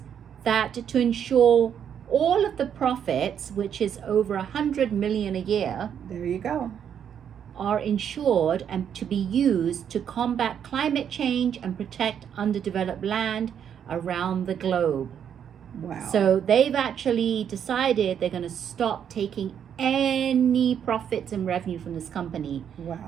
that to ensure all of the profits, which is over 100 million a year, There you go. are insured and to be used to combat climate change and protect underdeveloped land around the globe. Wow. So they've actually decided they're going to stop taking any profits and revenue from this company.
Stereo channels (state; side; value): quieter; left; 8.6 dB